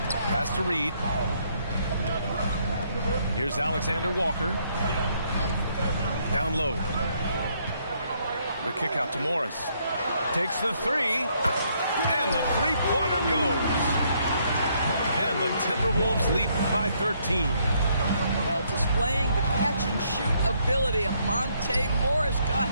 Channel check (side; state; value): both; inverted; correlation -0.71